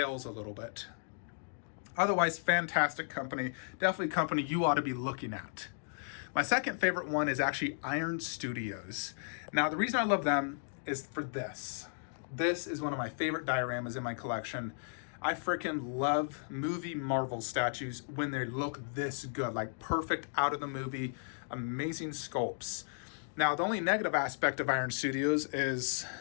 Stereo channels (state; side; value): silent; right; digital silence